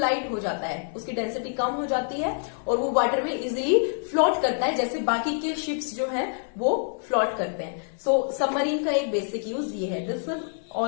हो जाता है, उसकी डेंसिटी कम हो जाती है और वो वाटर में इजीली फ्लोट करता है, जैसे बाकी के शिप्स जो हैं वो फ्लोट करते हैं। सो सबमरीन का एक बेसिक यूज ये है। This is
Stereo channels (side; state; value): right; silent; digital silence